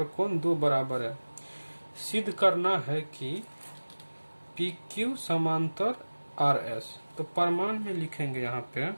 कोण 2 बराबर है। सिद्ध करना है कि पी क्यू समांतर आर एस। तो प्रमाण में लिखेंगे, यहाँ पे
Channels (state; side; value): inverted; both; correlation -1.00